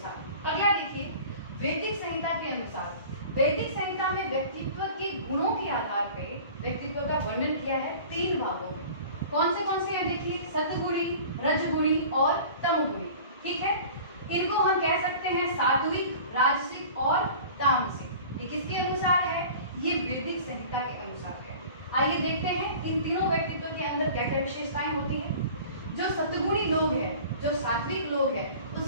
अगला देखिए वैदिक संहिता के अनुसार। वैदिक संहिता में व्यक्तित्व के गुणों के आधार पे व्यक्तित्व का वर्णन किया है 3 भागों में। कौन से हैं? देखिए, सतगुणी, रजगुणी और तमगुणी। ठीक है, इनको हम कह सकते हैं सात्विक, राजसिक और तामसिक। ये किसके अनुसार है? ये वैदिक संहिता के अनुसार है। आइए देखते हैं इन तीनों व्यक्तित्व के अंदर क्या क्या विशेषताएं होती हैं। जो सतगुणी लोग हैं, जो सात्विक लोग हैं,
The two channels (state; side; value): inverted; both; correlation -0.42